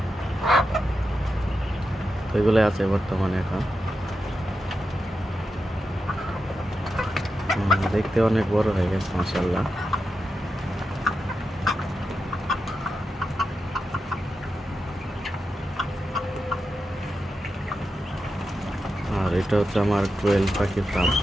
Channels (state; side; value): normal; both; correlation 0.89